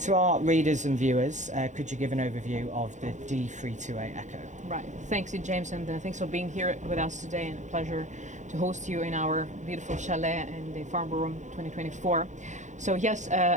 to our readers and viewers, could you give an overview of the D328eco? Right. Thanks, James, and thanks for being here with us today, and a pleasure to host you in our beautiful chalet in the Farnborough 2024. So yes,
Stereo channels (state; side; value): late; left; 0.35 ms